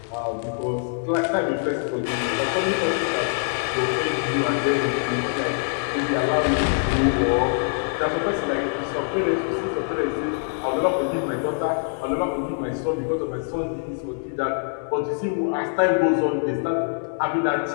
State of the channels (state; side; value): silent; right; 63 dB below the other